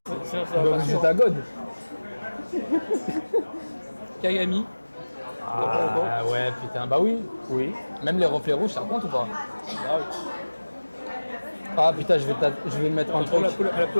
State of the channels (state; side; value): inverted; both; correlation -1.00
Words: sinon ça va Bah, pas c'est suivre. ta God. Kagami. Ah ouais, putain, bah oui. Oui. Même les reflets rouges, ça compte ou pas? Ah, oui. Ah putain, je vais mettre un Entre truc. la